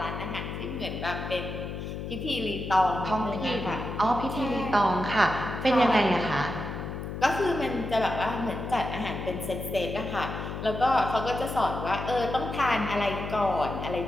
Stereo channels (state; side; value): noise; left; hum, 6 dB below the sound